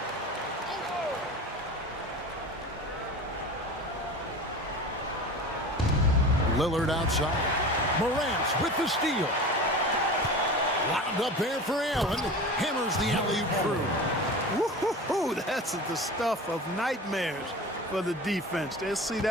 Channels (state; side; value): normal; both; correlation 0.34